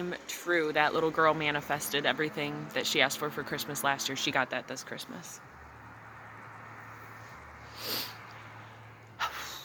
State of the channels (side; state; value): both; identical; correlation 1.00